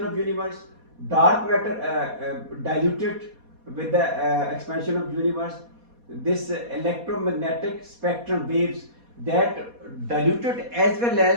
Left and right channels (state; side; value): late; left; 4.2 ms